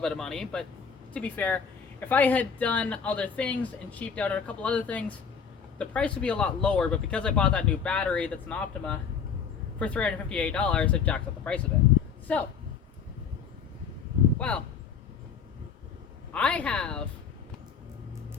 of money, but to be fair, if I had done other things and cheaped out on a couple other things, the price would be a lot lower. But because I bought that new battery that's an Optima for $358, it jacks up the price of it. So, well, I have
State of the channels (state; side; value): quieter; right; 6.6 dB